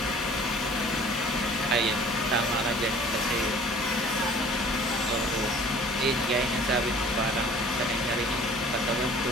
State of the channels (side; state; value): both; normal; correlation 0.50